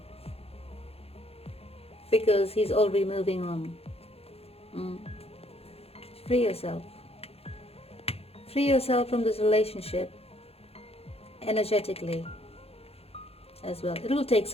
because he's already moving on. Free yourself. Free yourself from this relationship energetically as well. It will take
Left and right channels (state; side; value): late; right; 0.29 ms